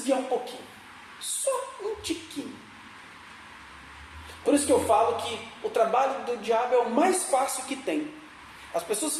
um pouquinho. Só um tiquinho. Por isso que eu falo que o trabalho do diabo é o mais fácil que tem. As pessoas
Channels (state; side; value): identical; both; correlation 1.00